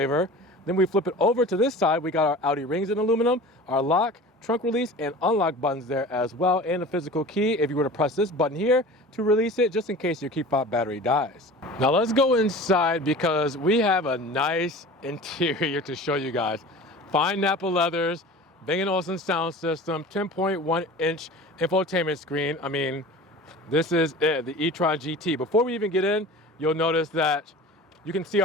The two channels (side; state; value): both; normal; correlation 0.39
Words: Then we flip it over to this side. We got our Audi rings in aluminum, our lock, trunk release, and unlock buttons there as well, and a physical key if you were to press this button here to release it, just in case your key fob battery dies. Now let's go inside, because we have a nice interior to show you guys. Fine Napa leathers, Bang & Olufsen sound system, 10.1 inch infotainment screen. I mean, this is it, the e-tron GT. Before we even get in, you'll notice that you can see